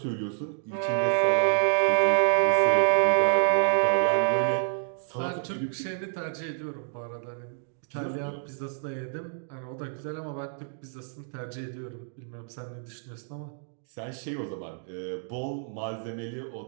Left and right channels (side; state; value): left; silent; digital silence